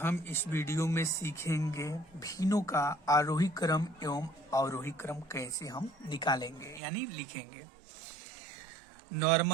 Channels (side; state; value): left; drops out; at 6.8 s